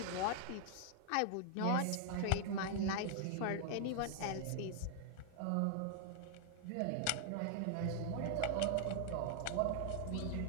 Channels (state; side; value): different; both; correlation 0.00